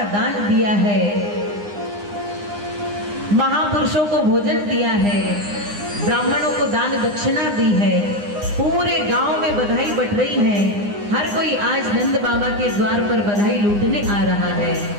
दान दिया है, महापुरुषों को भोजन दिया है, ब्राह्मणों को दान दक्षिणा दी है, पूरे गांव में बधाई बट रही है। हर कोई आज नंद बाबा के द्वार पर बधाई लूटने आ रहा है,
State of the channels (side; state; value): left; late; 9.8 ms